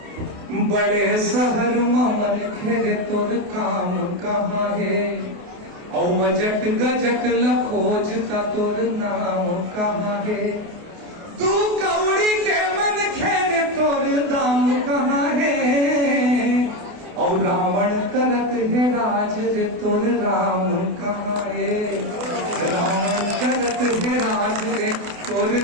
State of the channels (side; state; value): left; late; 28 ms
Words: बड़े शहर मन खेरे तोर काम कहाँ है और बजट गजट लखोज का तोर नाम कहाँ है तू कौड़ी के मन खेरे तोर दाम कहाँ है और रावण करत है राज रे तोर राम कहाँ है रावण करत है राज रे तोर